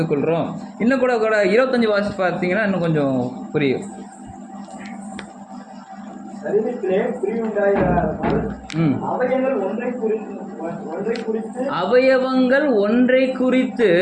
கொள்கிறோம். இன்னும் கூட 25 வாசி பார்த்தீங்கன்னா இன்னும் கொஞ்சம் புரியும். அவயவங்கள் ஒன்றை குறித்து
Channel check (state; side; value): identical; both; correlation 1.00